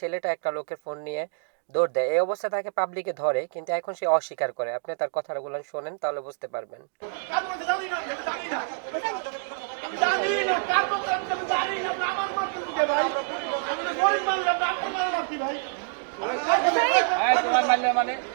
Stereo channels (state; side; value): silent; left; digital silence